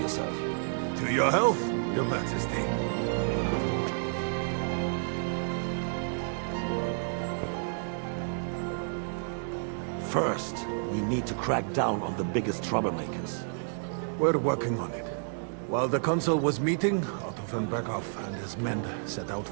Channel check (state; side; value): silent; left; digital silence